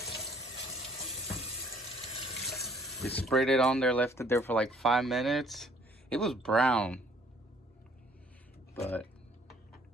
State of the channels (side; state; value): both; normal; correlation 0.59